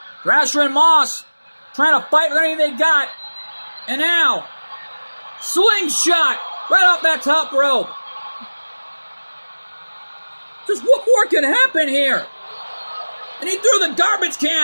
Thrasher and Moss trying to fight with anything they got. And now, slingshot right off that top rope. Just what more can happen here? And he threw the garbage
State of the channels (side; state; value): both; inverted; correlation -1.00